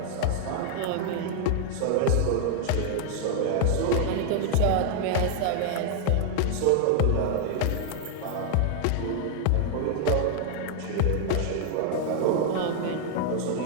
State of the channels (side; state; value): both; different; correlation 0.00